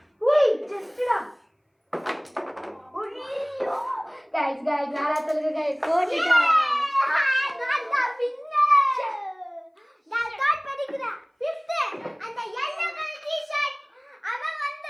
உய் ஜஸ்டா. ஐயோ गाइस யாரா சொல்லுங்க गाइस போட்டுட்டா. நான் தான் வின்னர். நான் டாட் படிக்கிறேன் 5th அந்த yellow கலர் டி-ஷர்ட் அவன்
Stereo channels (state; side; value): identical; both; correlation 1.00